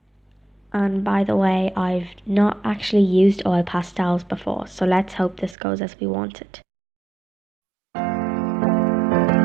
And by the way, I've not actually used oil pastels before, so let's hope this goes as we want it.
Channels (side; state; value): left; drops out; at 5.6 s